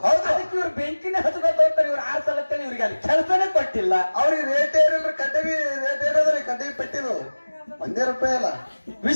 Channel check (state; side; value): inverted; both; correlation -1.00